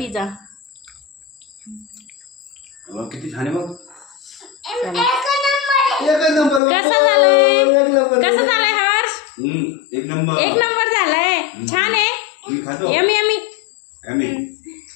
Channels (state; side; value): drops out; right; at 6.6 s